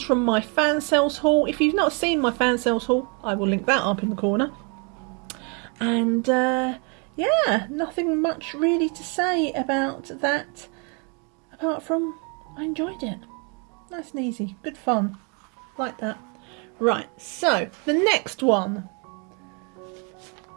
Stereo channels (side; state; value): left; quieter; 34.9 dB